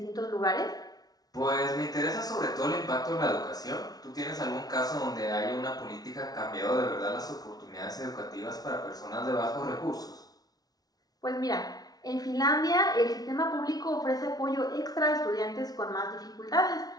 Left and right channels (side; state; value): right; late; 0.19 ms